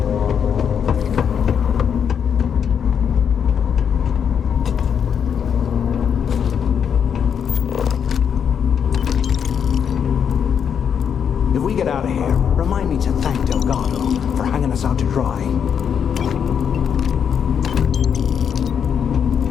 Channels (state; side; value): quieter; right; 7.7 dB